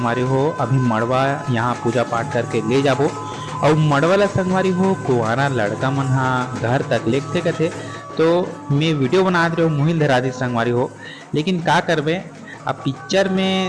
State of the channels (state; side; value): identical; both; correlation 1.00